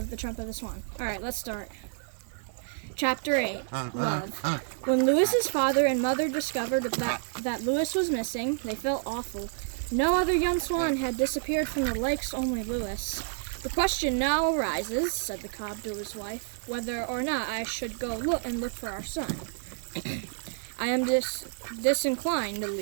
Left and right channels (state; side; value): silent; left; digital silence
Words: the Trumpet of the Swan. Alright, let's start. Chapter 8, Love. When Lewis's father and mother discovered that Lewis was missing, they felt awful. No other young swan had disappeared from the lakes, only Lewis. The question now arises, said the cob to his wife, whether or not I should go look for our son. I am disinclined to